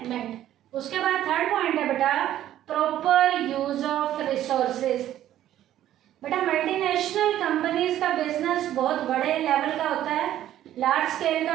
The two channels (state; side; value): quieter; left; 12.4 dB